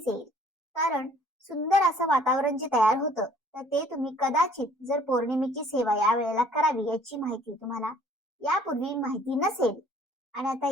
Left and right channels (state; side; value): normal; both; correlation 0.57